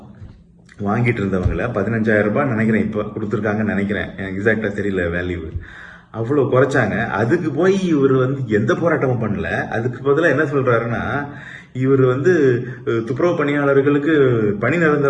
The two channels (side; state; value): both; identical; correlation 1.00